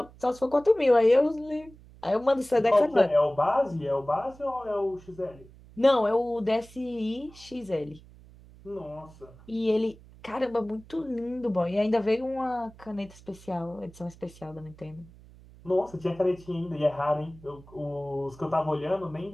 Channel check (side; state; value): right; noise; hum, 22 dB below the sound